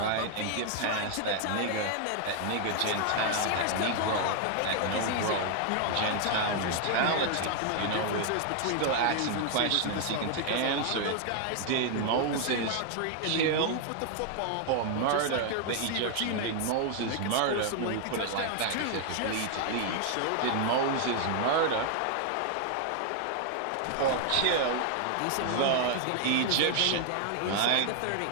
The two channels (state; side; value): different; both; correlation 0.00